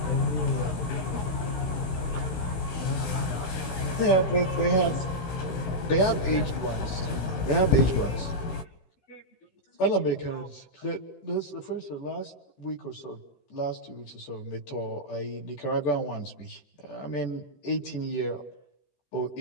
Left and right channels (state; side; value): late; right; 16 ms